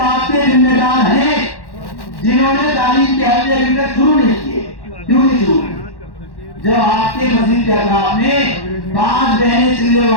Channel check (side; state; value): right; late; 1.1 ms